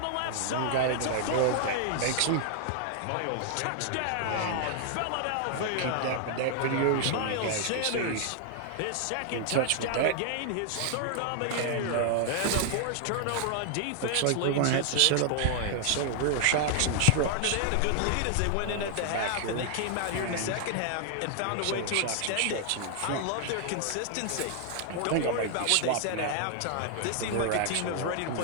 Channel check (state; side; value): different; both; correlation 0.00